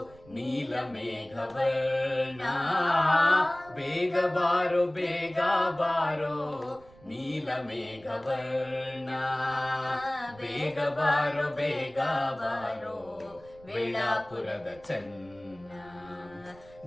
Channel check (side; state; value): right; noise; rumble, 24 dB below the sound